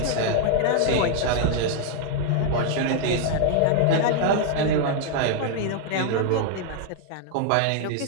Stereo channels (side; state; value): both; different; correlation 0.00